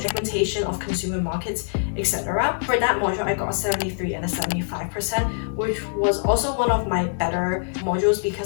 segmentation of consumer markets, etc. For that module I got a 73 and a 75%, which was also one of my better modules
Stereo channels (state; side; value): silent; right; digital silence